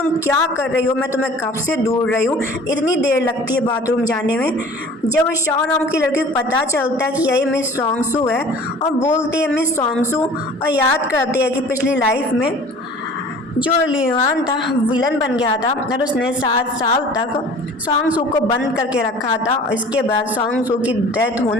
क्या कर रही हो, मैं तुम्हें कब से ढूंढ रही हूँ, इतनी देर लगती है बाथरूम जाने में। जब शाह नाम की लड़की को पता चलता है कि यही मिस सोंगशू है और बोलती है मिस सोंगशू, और याद करती है कि पिछली लाइफ में जो लिu यान था विलन बन गया था और उसने 7 साल तक सोंगशू को बंद करके रखा था। और इसके बाद सोंगशू की डेथ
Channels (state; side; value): normal; both; correlation 0.46